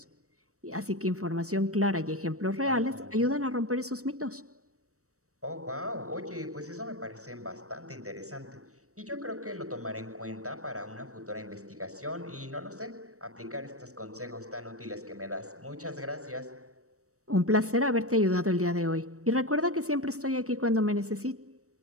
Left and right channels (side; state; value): left; late; 0.65 ms